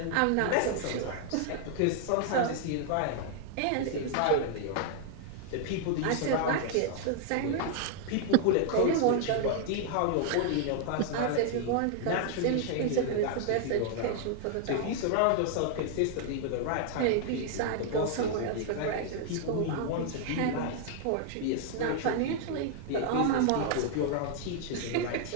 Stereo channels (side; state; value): both; different; correlation -0.01